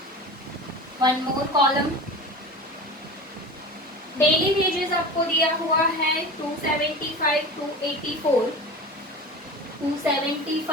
one more column. Daily wages आपको दिया हुआ है 275 to 84,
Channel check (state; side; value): normal; both; correlation 0.32